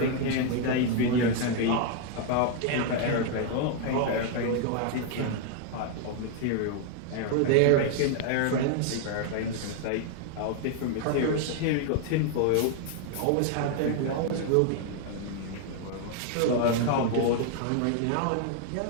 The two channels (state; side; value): different; both; correlation 0.00